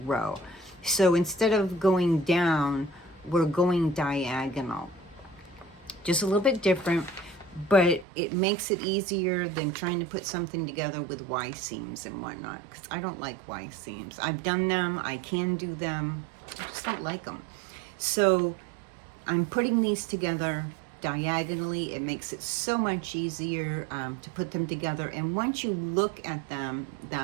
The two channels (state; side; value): drops out; left; at 8.1 s